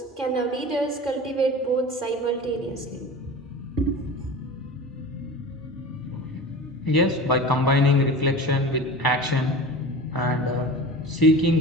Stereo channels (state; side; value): normal; both; correlation 0.33